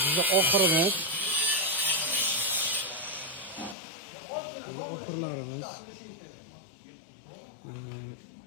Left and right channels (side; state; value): right; drops out; at 3.8 s